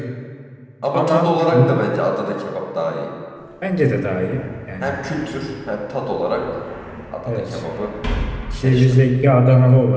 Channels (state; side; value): identical; both; correlation 1.00